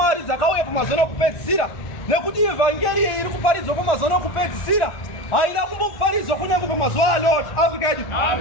dzakauya pamazuva okupedzisira, nekuti evhangeri iri kuparidzwa pamazuva okupedzisira haina kumboparidzwa kunyange pamazuva aLoti. Africa yedu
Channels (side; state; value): right; late; 1.4 ms